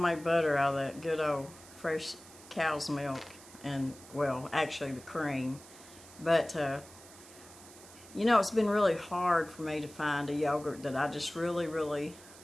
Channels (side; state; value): right; noise; hiss, 20 dB below the sound